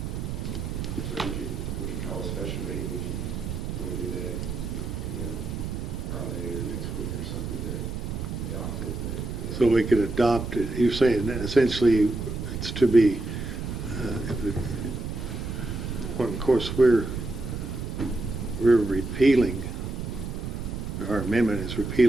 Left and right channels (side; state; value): right; noise; rumble, 5 dB below the sound